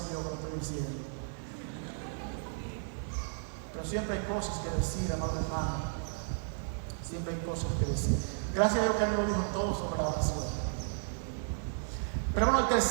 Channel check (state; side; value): silent; left; digital silence